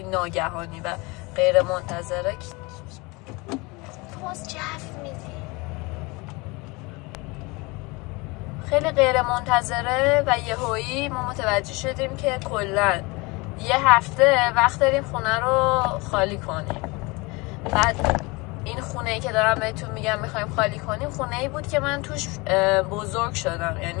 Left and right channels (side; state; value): right; quieter; 25.6 dB